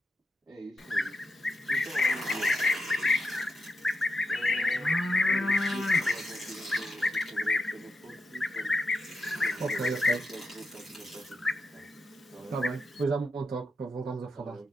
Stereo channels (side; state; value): both; normal; correlation 0.86